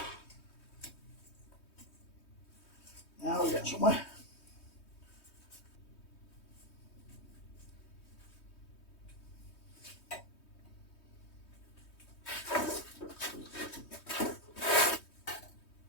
Now we get somewhere.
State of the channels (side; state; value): right; late; 3.2 ms